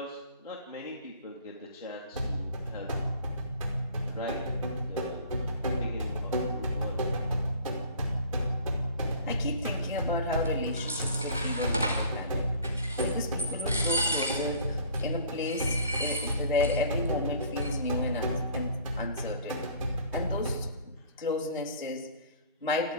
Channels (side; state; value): both; inverted; correlation -0.49